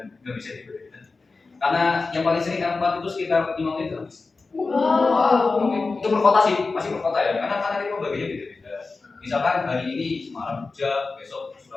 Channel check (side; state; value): right; quieter; 4.0 dB